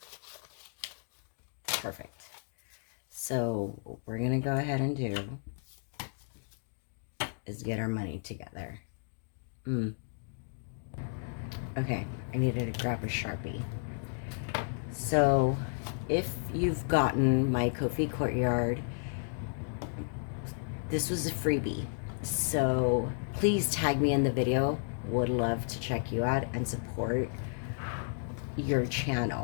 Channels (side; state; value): right; silent; digital silence